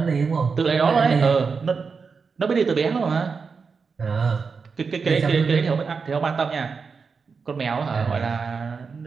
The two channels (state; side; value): quieter; left; 5.2 dB